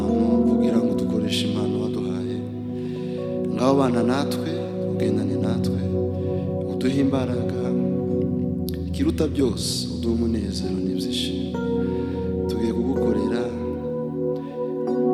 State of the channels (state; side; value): identical; both; correlation 1.00